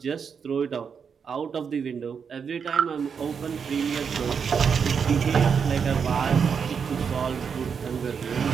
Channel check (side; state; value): left; quieter; 6.5 dB